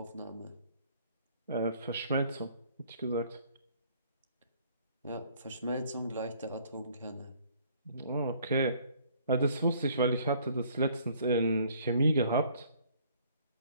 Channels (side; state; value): both; inverted; correlation -0.59